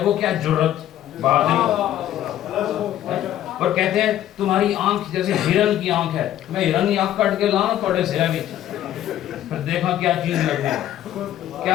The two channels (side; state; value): right; quieter; 12.1 dB